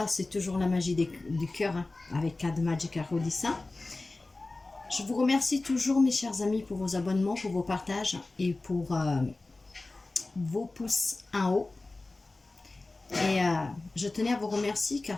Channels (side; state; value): right; quieter; 3.2 dB